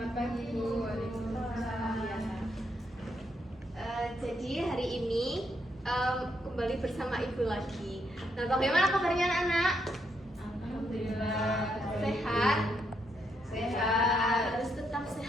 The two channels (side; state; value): both; normal; correlation 0.77